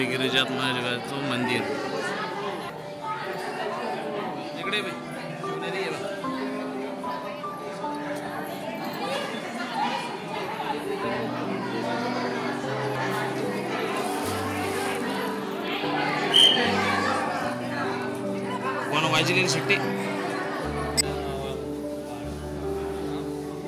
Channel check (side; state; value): both; identical; correlation 1.00